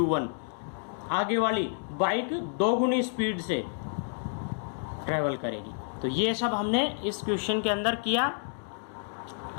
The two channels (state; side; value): silent; right; digital silence